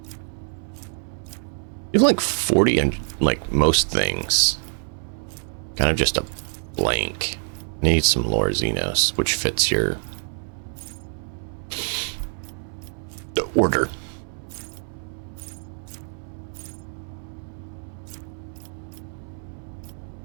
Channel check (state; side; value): silent; left; 60 dB below the other